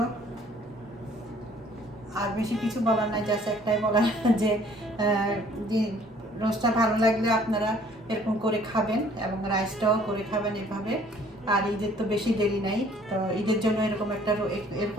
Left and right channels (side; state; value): both; normal; correlation 0.57